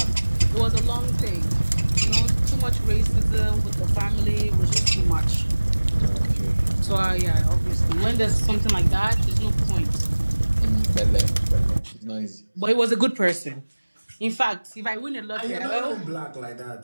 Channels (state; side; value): inverted; both; correlation -1.00